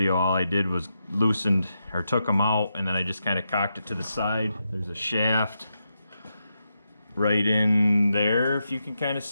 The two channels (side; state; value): both; inverted; correlation -0.85